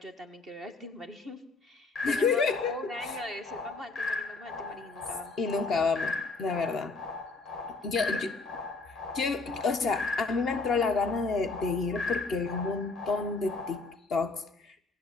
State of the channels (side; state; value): right; quieter; 3.8 dB